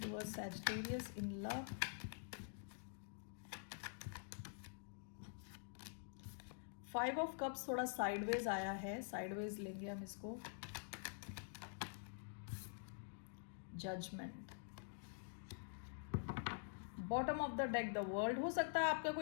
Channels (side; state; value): right; silent; digital silence